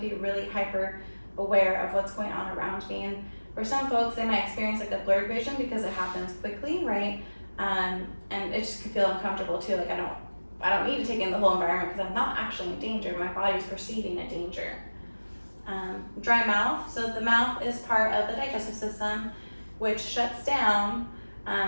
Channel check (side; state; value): both; inverted; correlation -1.00